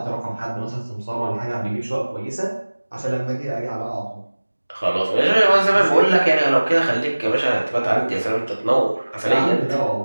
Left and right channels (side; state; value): both; inverted; correlation -1.00